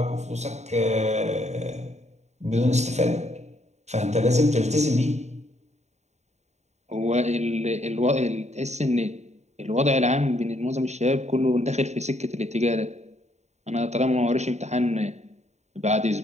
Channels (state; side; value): late; left; 0.32 ms